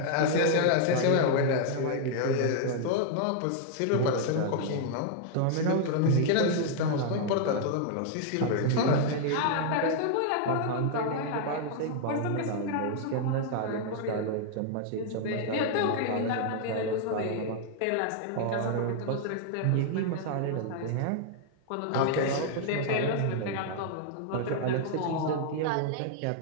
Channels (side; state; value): both; different; correlation 0.00